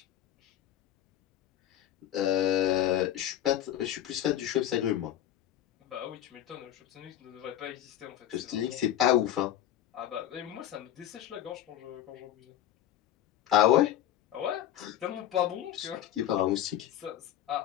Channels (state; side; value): quieter; right; 11.8 dB